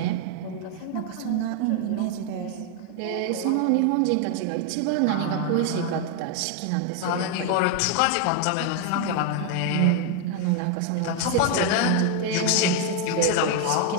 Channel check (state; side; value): different; both; correlation 0.01